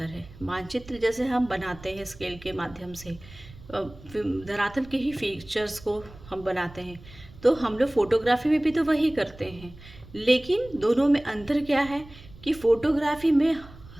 है। मानचित्र जैसे हम बनाते हैं स्केल के माध्यम से, धरातल के ही फीचर्स को हम बनाते हैं, तो हम लोग फोटोग्राफी में भी तो वही करते हैं। लेकिन दोनों में अंतर क्या है कि फोटोग्राफी में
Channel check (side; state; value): right; noise; rumble, 19 dB below the sound